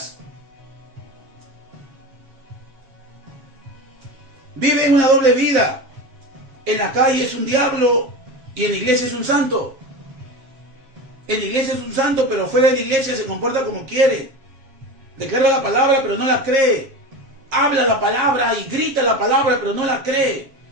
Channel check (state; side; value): late; left; 7.3 ms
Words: Vive en una doble vida. En la calle es un diablo y en la iglesia es un santo. En la iglesia es un santo, pero fuera de la iglesia se comporta como quiere. Declara la palabra, pero no la cree. Habla la palabra y grita la palabra, pero no la cree.